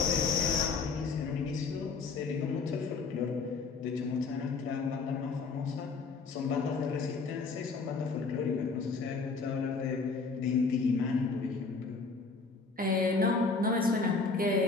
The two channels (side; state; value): right; quieter; 4.4 dB